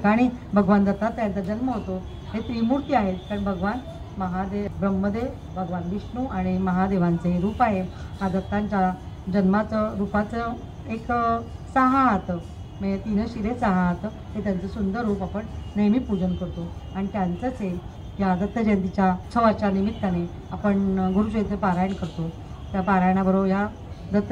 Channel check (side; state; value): both; identical; correlation 1.00